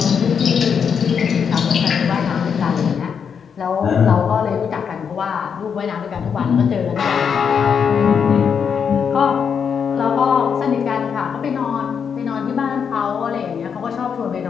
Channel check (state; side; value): quieter; right; 6.9 dB